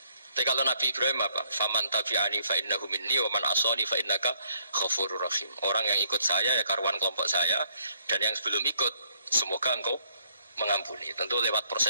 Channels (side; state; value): both; inverted; correlation -0.66